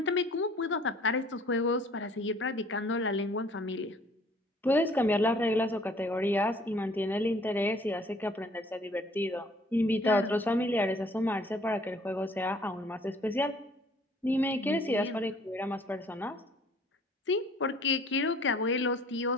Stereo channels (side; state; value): both; normal; correlation 0.56